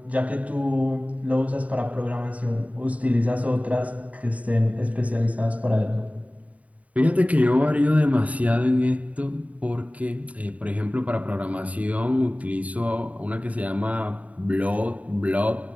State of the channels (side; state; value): left; late; 0.069 ms